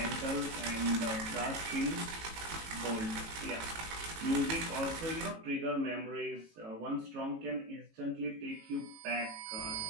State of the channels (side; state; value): left; late; 18 ms